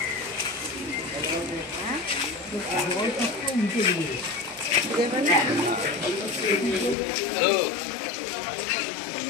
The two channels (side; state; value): right; drops out; at 7.0 s